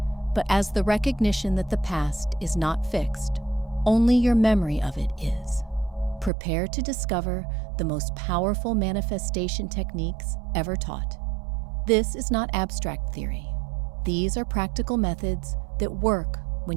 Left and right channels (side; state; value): left; drops out; at 6.3 s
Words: but as the recognition that the past is not fixed, only your memory of it is. Prepare to discover the most powerful manifestation techniques ever taught. This is not abstract theory. These are practical methods that work